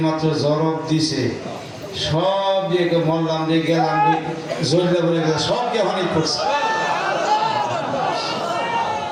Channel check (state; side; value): identical; both; correlation 1.00